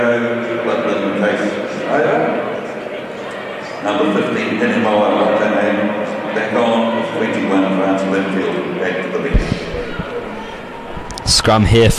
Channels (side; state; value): both; identical; correlation 1.00